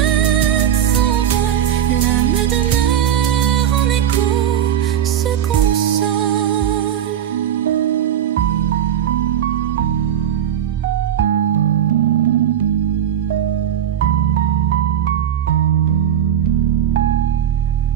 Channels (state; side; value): quieter; left; 9.9 dB